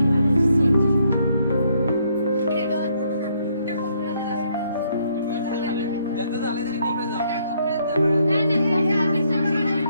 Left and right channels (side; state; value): both; inverted; correlation -0.72